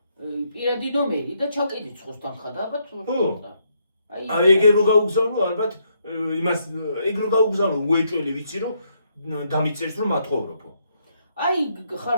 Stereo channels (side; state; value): both; inverted; correlation -0.75